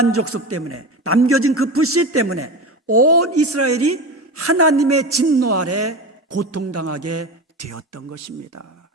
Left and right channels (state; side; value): normal; both; correlation 0.25